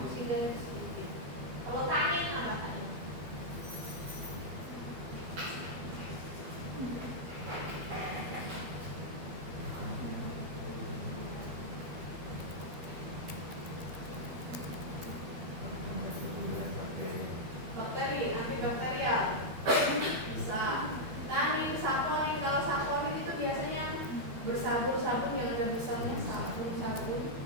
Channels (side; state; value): left; late; 12 ms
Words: sedikit. Kalau tanin apa tanin? Bakteri, antibakterial bisa. Tanin, saponin, kalau saponin itu biasanya bersabun-sabun yang ada besarnya sabun. Saponin